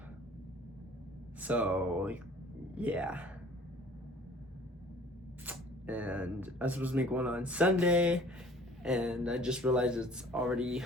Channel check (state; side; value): normal; both; correlation 0.51